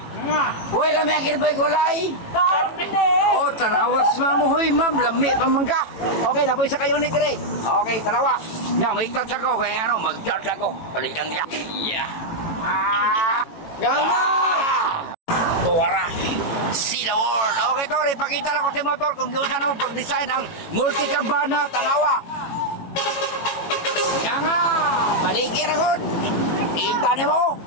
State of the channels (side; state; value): right; late; 18 ms